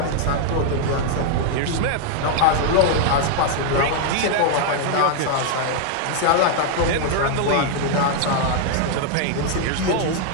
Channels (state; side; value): different; both; correlation 0.00